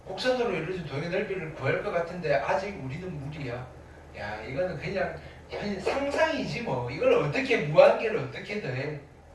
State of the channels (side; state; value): both; identical; correlation 1.00